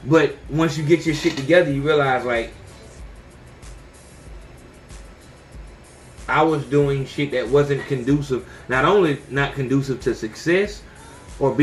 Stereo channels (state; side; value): identical; both; correlation 1.00